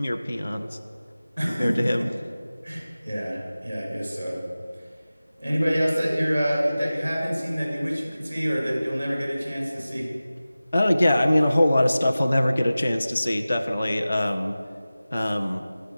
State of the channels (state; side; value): inverted; both; correlation -0.97